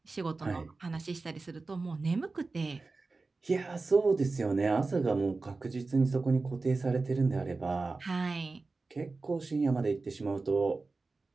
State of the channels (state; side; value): quieter; left; 3.7 dB